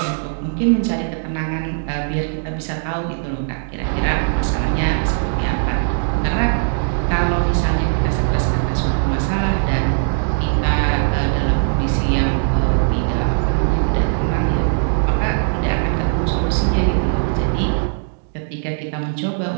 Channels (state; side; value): silent; left; digital silence